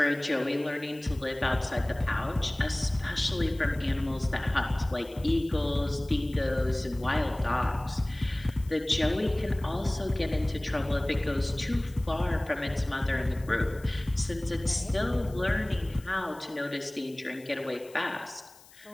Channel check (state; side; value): noise; left; hiss, 24 dB below the sound